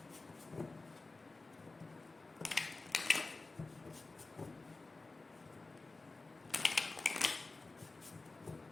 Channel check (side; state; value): right; quieter; 3.5 dB